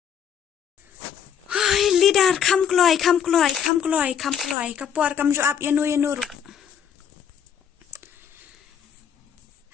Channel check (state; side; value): quieter; right; 8.5 dB